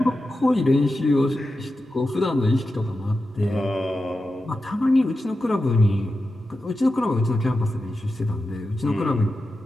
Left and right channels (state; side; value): normal; both; correlation 0.91